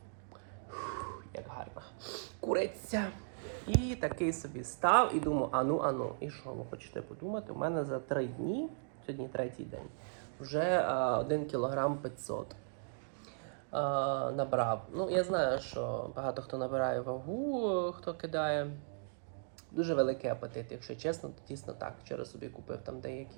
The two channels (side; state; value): left; silent; digital silence